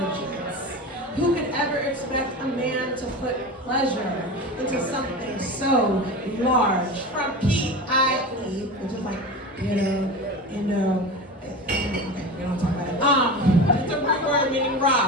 Who could ever expect a man to put pleasure into something so large? From P-I-E, which is like, okay, we don't talk about it. It's a root word meaning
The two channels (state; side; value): normal; both; correlation 0.28